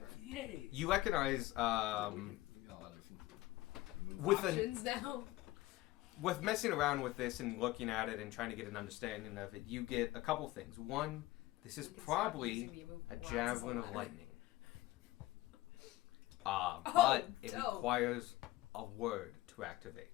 Yay! you recognize, We got a lot of with an Options now. with messing around with this and looking at it and trying to get an understanding of it, you get a couple things. One, this is We can start probably using the a glasses javelin a of lot. lightning. But it dope. requires a word to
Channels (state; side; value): quieter; right; 17.9 dB